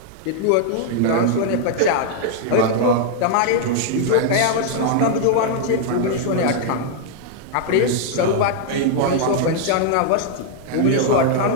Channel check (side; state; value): both; different; correlation 0.00